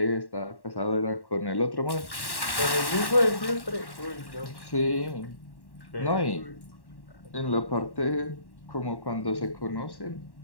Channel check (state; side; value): late; right; 1.1 ms